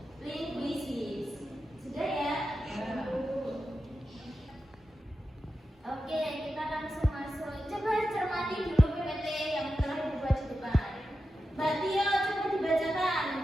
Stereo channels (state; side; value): normal; both; correlation 0.90